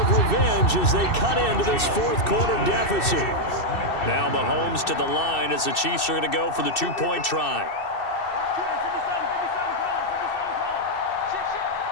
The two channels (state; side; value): late; right; 2.7 ms